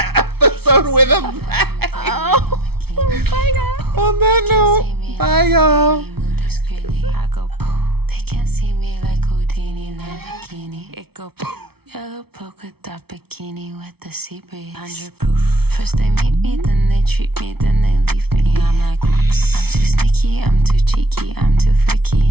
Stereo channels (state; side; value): late; left; 0.96 ms